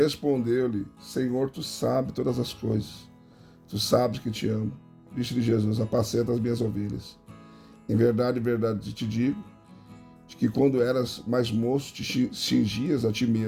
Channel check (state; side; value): identical; both; correlation 1.00